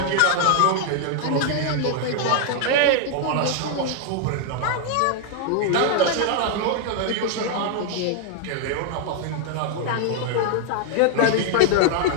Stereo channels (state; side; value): different; both; correlation 0.00